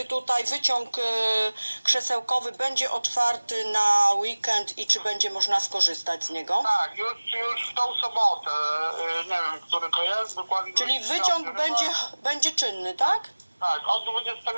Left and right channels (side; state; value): both; inverted; correlation -1.00